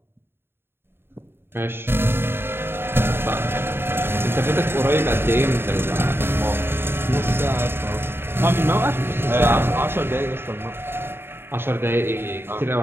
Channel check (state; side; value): late; left; 0.11 ms